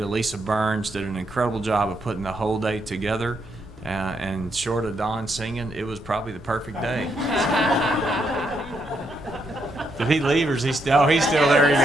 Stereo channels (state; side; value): normal; both; correlation 0.78